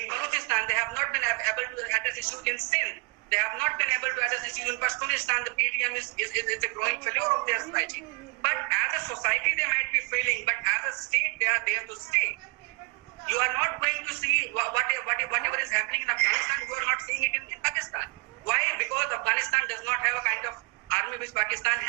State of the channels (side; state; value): left; quieter; 32.5 dB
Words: Balochistan. They have not been able to address issues in Sindh. They have not been able to address issues in Pashtunistan. The PTM is a growing failure of their society. But as a society, they might be failing. But as a state, they are there to stay. You are not going to see whatever is happening in Afghanistan. You are not seeing it in Pakistan. Why? Because Afghanistan does not have a kind of army which Pakistan